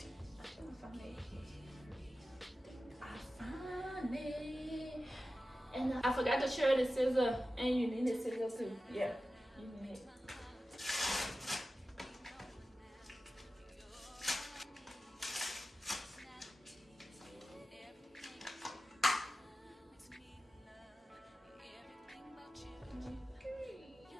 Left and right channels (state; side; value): normal; both; correlation 0.94